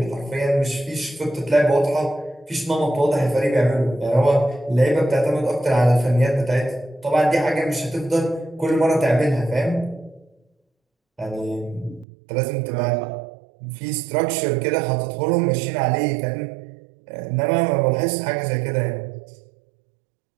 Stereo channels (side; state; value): left; drops out; at 12.1 s